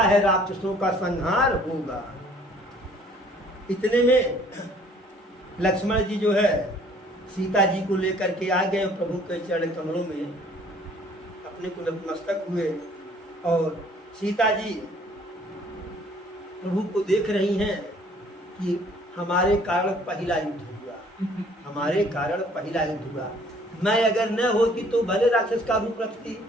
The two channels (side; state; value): both; normal; correlation 0.57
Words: राक्षसों का संहार होगा। इतने में लक्ष्मण जी जो है सीता जी को लेकर के आ गए, प्रभु के चरण कमलों में अपने को नतमस्तक हुए। और सीता जी प्रभु को देख रही हैं कि हमारे कारण पहला युद्ध हुआ, हमारे कारण पहला युद्ध हुआ। मैं अगर न होती तो भले राक्षस का रूप रखती,